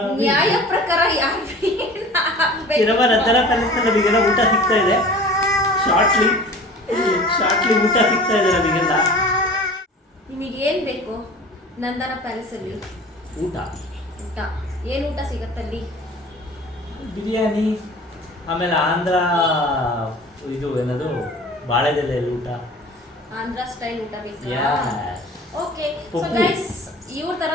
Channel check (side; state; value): both; normal; correlation 0.42